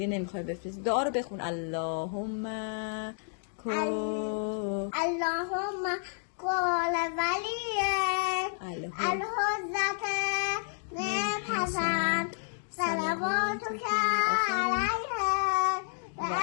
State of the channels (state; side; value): silent; right; 57 dB below the other